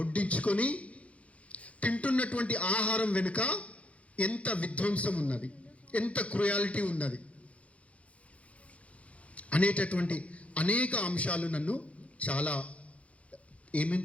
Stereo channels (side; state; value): right; late; 0.064 ms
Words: తింటున్నటువంటి ఆహారం వెనుక ఎంత విధ్వంసం ఉన్నది, ఎంత క్రుయాలిటీ ఉన్నది అనేటటువంటి అనేక అంశాలు నన్ను చాలా ఏమేం